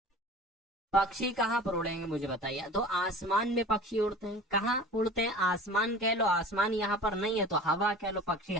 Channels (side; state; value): both; normal; correlation 0.40